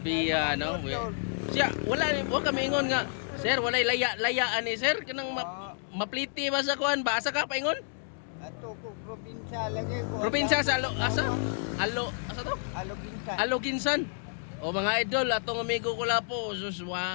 Biya no. Siya wala kami ingon nga. Sir, walay layaan ni sir kanang mapliti ba sa kuan ba? Asa ka paingon? Ato ko probinsya lagi ko. Probinsya sa asa? Asa to? Aloginsan. Aloginsan. O mga idol, atong amigo ko la po, sus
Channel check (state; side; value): silent; right; digital silence